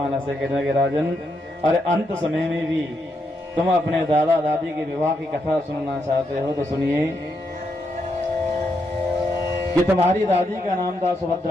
ऐसे कहने लगे, राजन अरे अंत समय में भी तुम अपने दादा दादी के विवाह की कथा सुनना चाहते हो तो सुनिए कि तुम्हारी दादी का नाम था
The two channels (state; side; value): normal; both; correlation 0.81